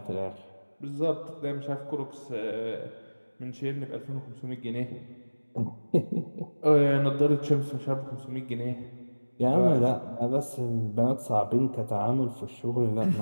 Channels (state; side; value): inverted; both; correlation -1.00